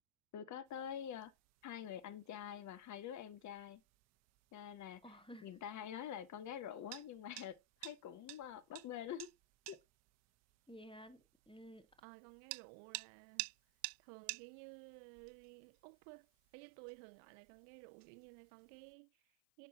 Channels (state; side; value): drops out; left; at 12.0 s